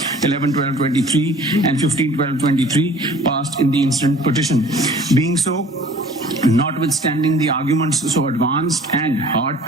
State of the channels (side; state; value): both; normal; correlation 0.49